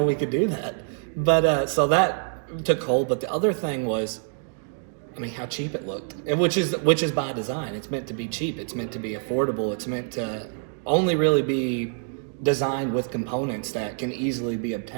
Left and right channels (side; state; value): left; silent; 61 dB below the other